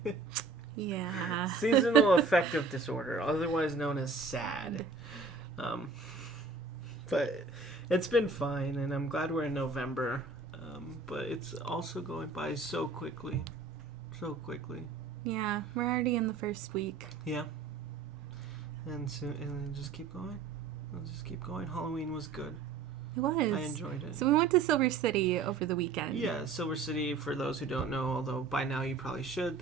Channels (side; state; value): left; quieter; 4.4 dB